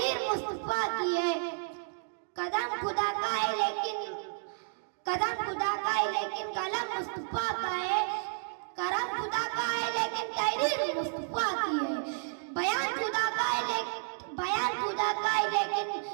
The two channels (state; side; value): silent; left; digital silence